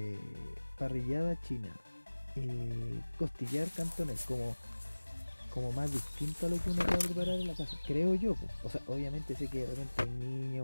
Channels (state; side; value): inverted; both; correlation -1.00